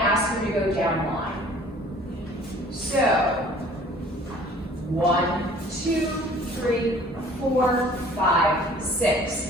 ask you to go down line. So, 1, 2, 3, 4, 5, 6.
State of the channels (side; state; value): both; normal; correlation 0.51